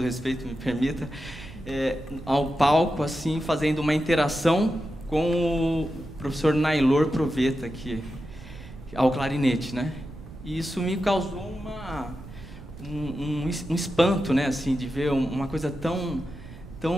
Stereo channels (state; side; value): noise; right; rumble, 16 dB below the sound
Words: respeito, me permita, ao palco, assim, fazendo uma interação com o professor Nailor Proveta, ao clarinete, né? E isso me causou um espanto, né, assim, de ver uma coisa tão